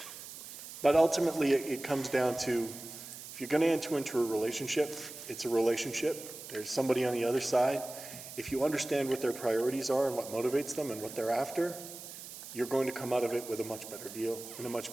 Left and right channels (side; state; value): right; noise; hiss, 12 dB below the sound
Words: But ultimately, it comes down to, if you're going to enter into a relationship, it's a relationship. There's somebody on the other side. If you understand what their priorities are and what motivates them and what they're after, you're going to come out of it with a much better deal and a much